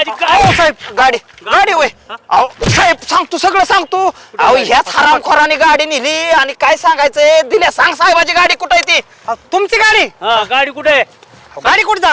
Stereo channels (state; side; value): identical; both; correlation 1.00